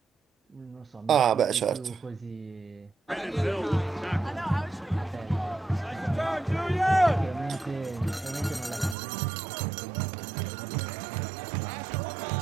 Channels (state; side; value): drops out; left; at 9.0 s